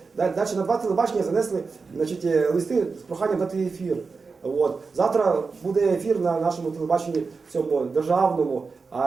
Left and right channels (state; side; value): quieter; left; 4.6 dB